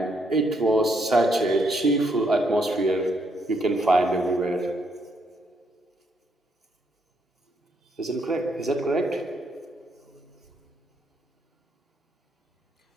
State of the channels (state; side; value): normal; both; correlation 0.74